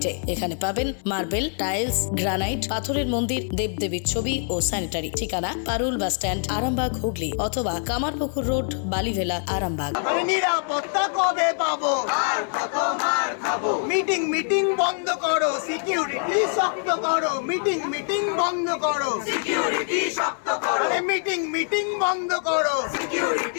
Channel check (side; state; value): right; silent; 56 dB below the other